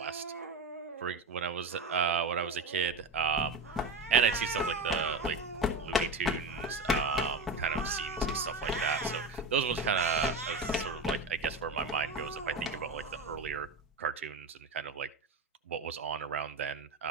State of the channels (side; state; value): left; quieter; 3.3 dB